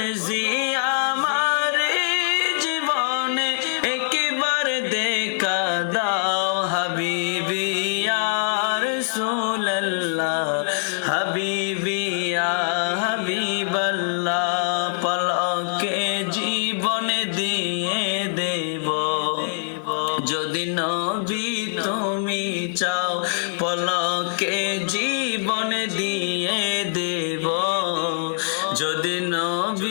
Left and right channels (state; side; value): silent; right; digital silence